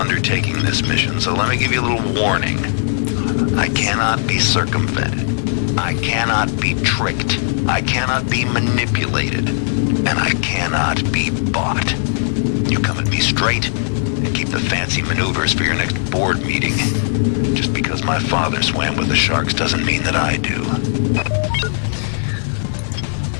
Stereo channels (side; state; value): right; silent; digital silence